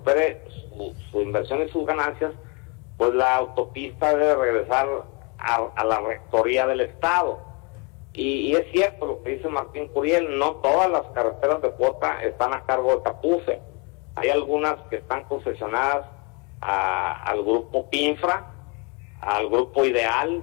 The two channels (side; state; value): right; quieter; 30.3 dB